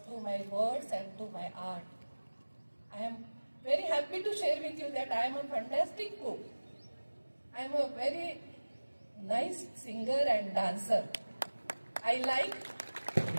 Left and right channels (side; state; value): both; inverted; correlation -1.00